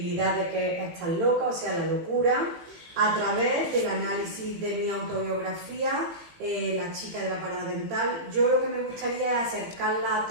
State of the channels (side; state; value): left; late; 18 ms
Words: de que estás loca, o sea, la locura, a través del análisis de mi autobiografía, La chica de la parada dental. Yo lo que me gustaría es acercarla a